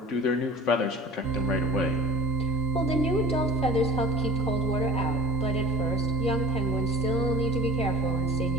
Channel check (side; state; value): both; normal; correlation 0.42